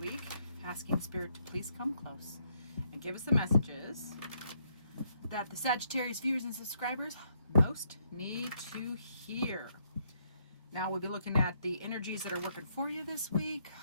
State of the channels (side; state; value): both; inverted; correlation -0.73